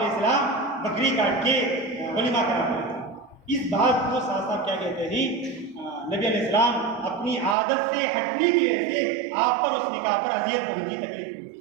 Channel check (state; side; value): drops out; left; at 7.6 s